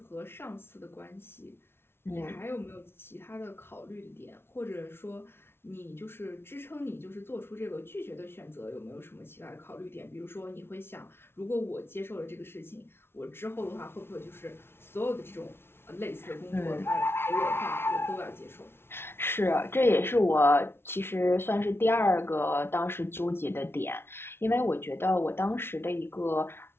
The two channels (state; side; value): late; right; 0.12 ms